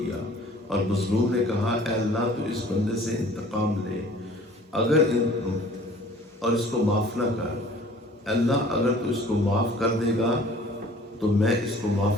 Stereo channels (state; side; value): normal; both; correlation 0.50